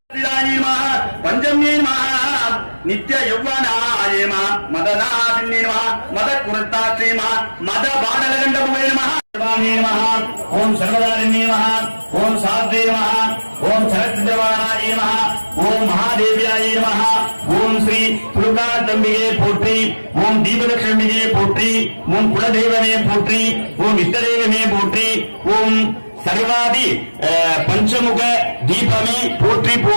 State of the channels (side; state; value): both; inverted; correlation -1.00